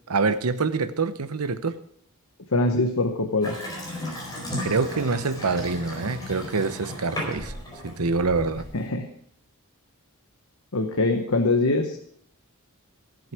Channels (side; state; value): both; normal; correlation -0.05